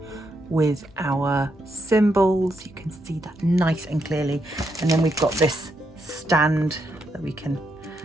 with our symbols. You can see that nice and clearly, and then we've got this stand that we can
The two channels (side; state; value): both; normal; correlation 0.80